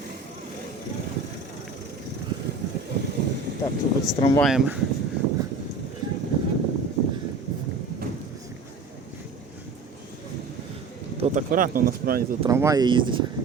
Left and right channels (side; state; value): left; quieter; 4.1 dB